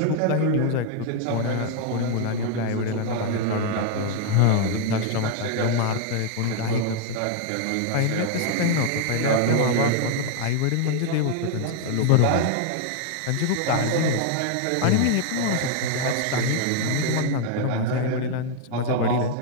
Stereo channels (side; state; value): both; different; correlation 0.00